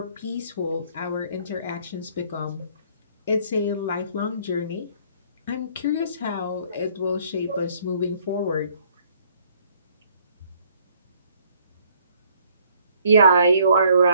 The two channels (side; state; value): both; inverted; correlation -0.62